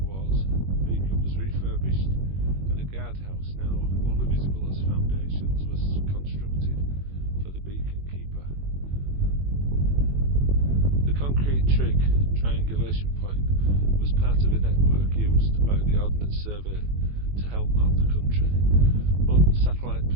Wars, the beacon was refurbished and a guardhouse, now only visible as foundations, was constructed for the beacon keeper. The concrete trig triangulation point was part of a network used by the Ordnance Survey to help map the country. Modern satellite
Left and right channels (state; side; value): late; left; 21 ms